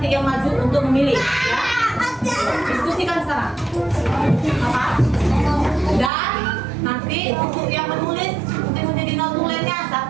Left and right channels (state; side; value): drops out; left; at 6.1 s